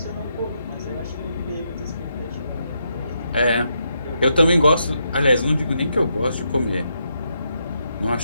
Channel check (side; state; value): both; inverted; correlation -0.81